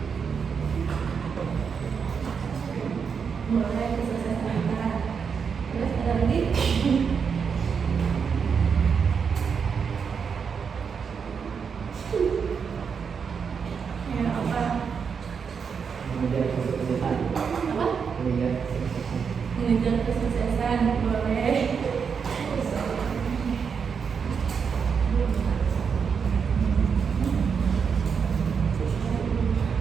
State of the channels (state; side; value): quieter; left; 6.3 dB